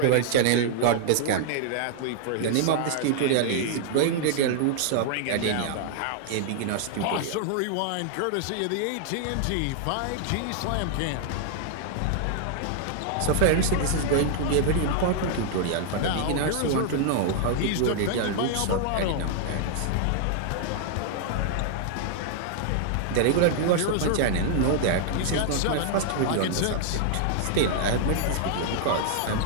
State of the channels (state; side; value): different; both; correlation -0.01